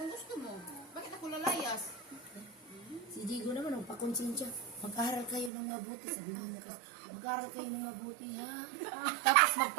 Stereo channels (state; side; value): drops out; left; at 5.5 s